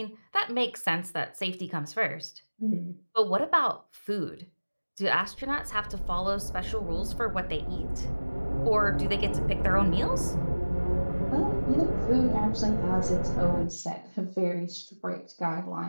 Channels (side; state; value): both; inverted; correlation -1.00